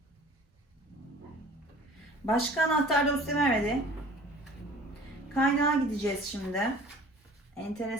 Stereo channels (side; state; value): both; normal; correlation 0.47